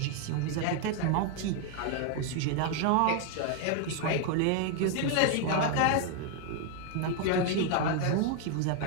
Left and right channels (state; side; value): different; both; correlation 0.01